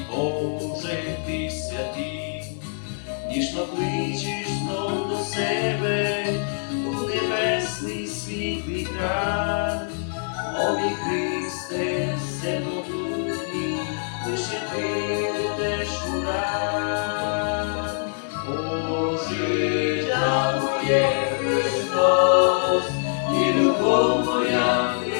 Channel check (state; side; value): silent; right; digital silence